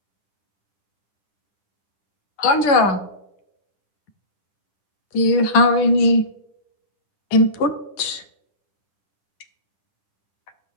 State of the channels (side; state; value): right; late; 10 ms